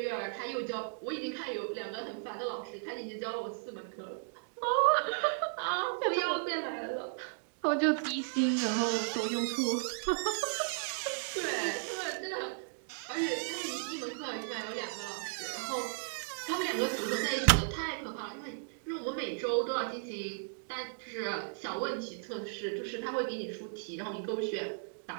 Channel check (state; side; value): silent; left; digital silence